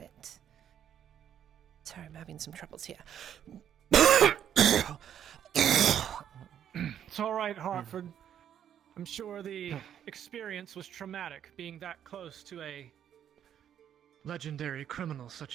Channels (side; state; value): left; quieter; 9.6 dB